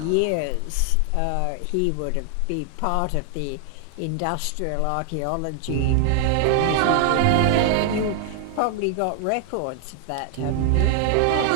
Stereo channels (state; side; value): different; both; correlation 0.00